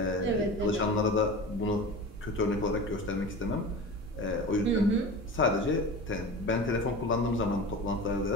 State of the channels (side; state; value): both; normal; correlation 0.32